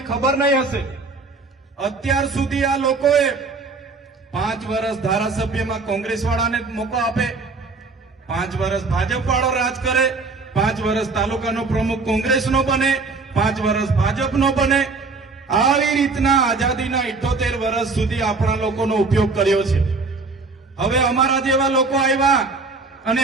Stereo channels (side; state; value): left; quieter; 4.0 dB